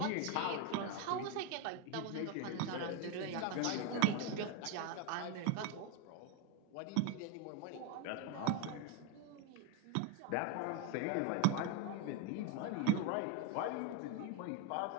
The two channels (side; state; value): both; different; correlation 0.01